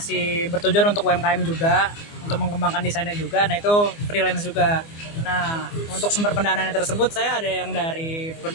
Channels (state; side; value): late; right; 24 ms